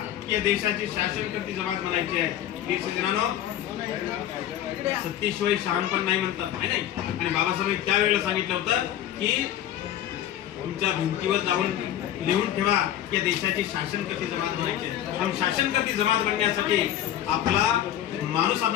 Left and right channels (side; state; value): right; quieter; 11.6 dB